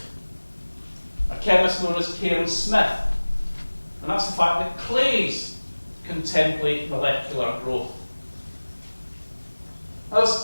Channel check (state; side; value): inverted; both; correlation -1.00